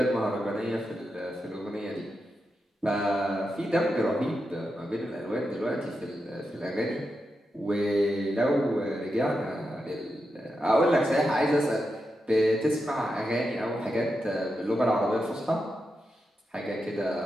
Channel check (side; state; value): both; normal; correlation 0.87